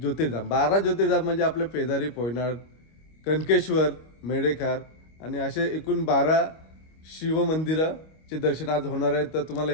12 ज्योतिर्धाम म्हणजे आपले पेदारी, पोयनाड, कनकेश्वर, मेढेखार आणि असे एकूण 12 शिवमंदिराचे दर्शन आज होणार आहेत. तर तुम्हाला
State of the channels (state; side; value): late; right; 25 ms